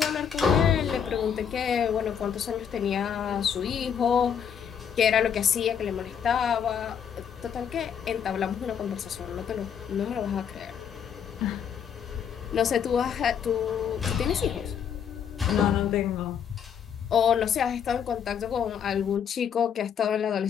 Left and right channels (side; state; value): right; quieter; 7.9 dB